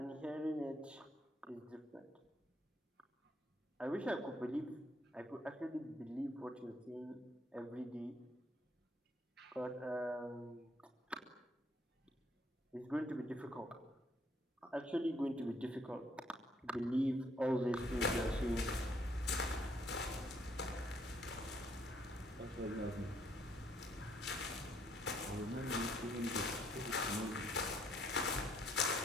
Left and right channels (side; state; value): both; normal; correlation 0.68